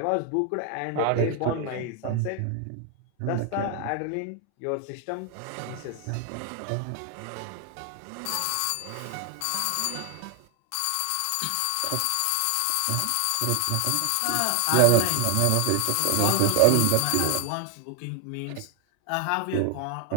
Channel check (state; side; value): different; both; correlation 0.00